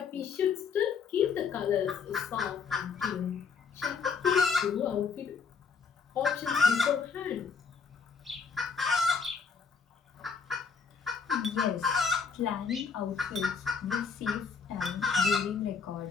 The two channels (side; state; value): right; quieter; 5.8 dB